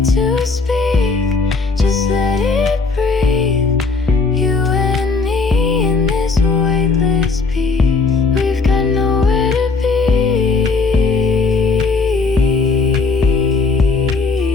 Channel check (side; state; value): right; quieter; 4.2 dB